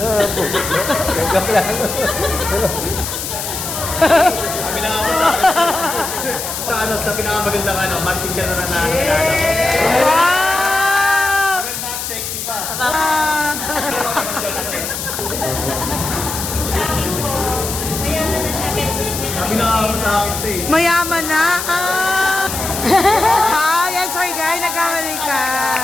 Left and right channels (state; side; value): noise; left; hiss, 5 dB below the sound